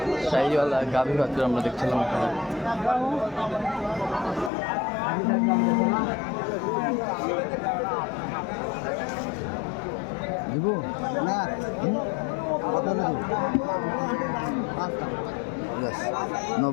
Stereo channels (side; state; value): right; drops out; at 4.5 s